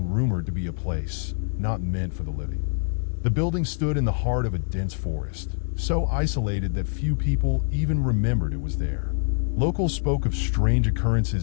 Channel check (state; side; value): silent; right; digital silence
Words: rumored to be a place not meant for the living. The building stood in the heart of a dense forest, so isolated that few people even remembered it was there. Locals spoke of strange